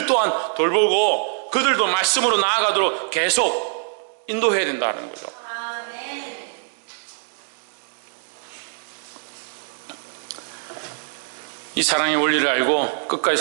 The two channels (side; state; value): left; silent; digital silence